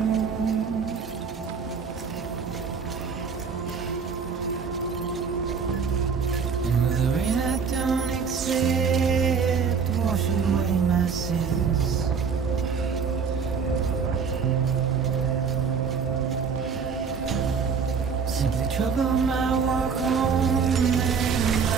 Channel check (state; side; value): quieter; left; 6.0 dB